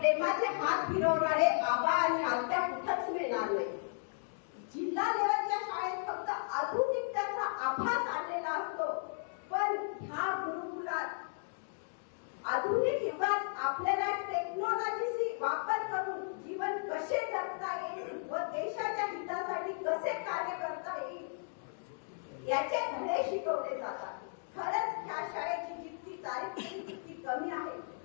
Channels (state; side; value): silent; right; digital silence